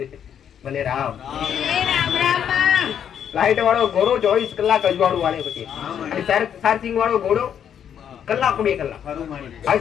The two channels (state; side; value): quieter; right; 8.8 dB